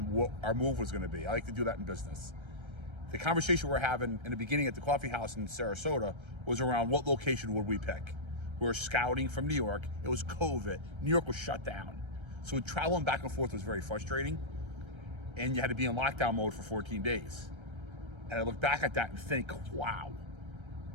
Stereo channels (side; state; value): left; late; 1.3 ms